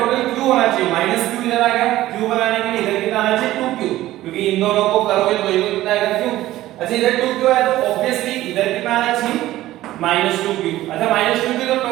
q होना चाहिए, -q इधर आ गया, q बनाने के लिए इधर कितना आना चाहिए? 2q, क्योंकि इन दोनों को करोगे तो ये कितना आएगा? q। अच्छा इधर 2q है, तो ऑब्वियसली इधर कितना आना चाहिए? -2q। अच्छा -2q तो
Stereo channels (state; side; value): quieter; left; 15.3 dB